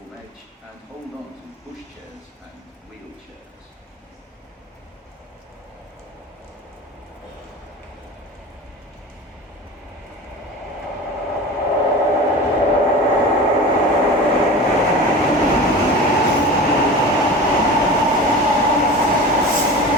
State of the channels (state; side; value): normal; both; correlation 0.34